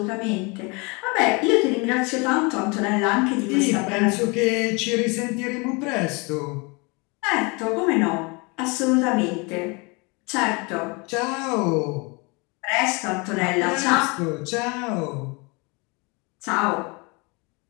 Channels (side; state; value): right; quieter; 29.0 dB